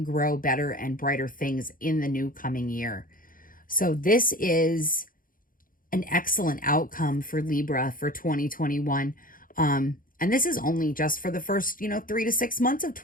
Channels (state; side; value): late; right; 0.40 ms